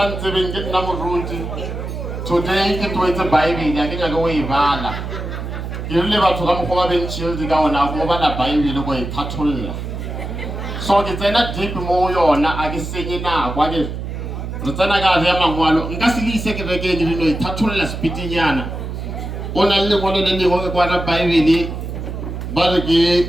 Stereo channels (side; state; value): right; noise; hum, 6 dB below the sound